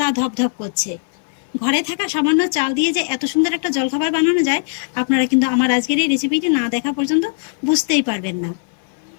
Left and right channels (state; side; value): silent; right; 57 dB below the other